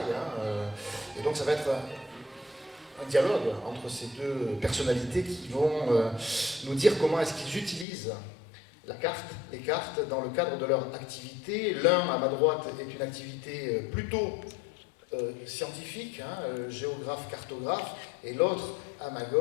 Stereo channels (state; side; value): drops out; right; at 7.9 s